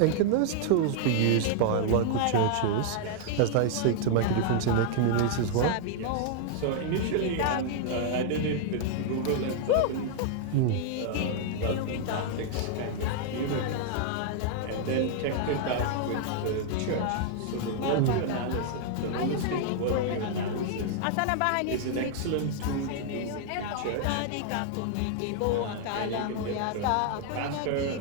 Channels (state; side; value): different; both; correlation -0.01